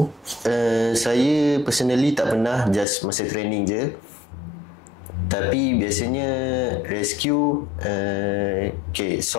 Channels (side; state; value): right; drops out; at 2.9 s